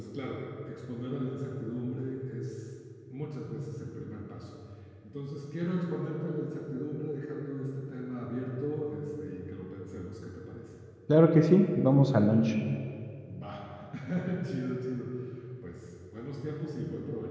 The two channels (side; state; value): both; identical; correlation 1.00